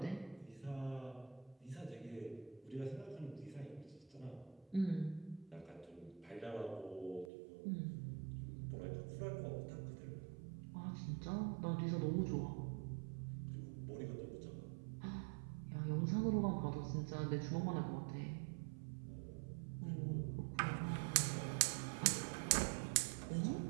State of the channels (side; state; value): left; drops out; at 7.3 s